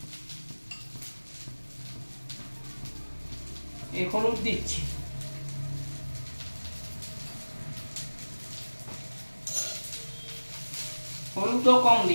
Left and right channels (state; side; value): inverted; both; correlation -1.00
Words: হলুদ দিচ্ছি। হলুদও কম